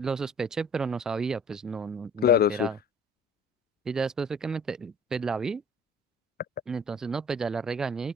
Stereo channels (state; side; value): normal; both; correlation 0.47